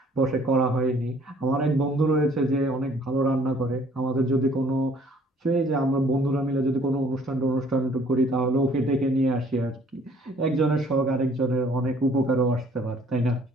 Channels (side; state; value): both; normal; correlation 0.58